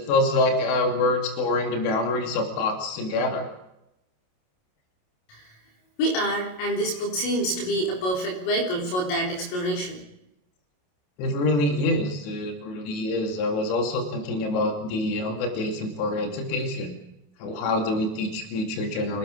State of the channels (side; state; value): right; late; 27 ms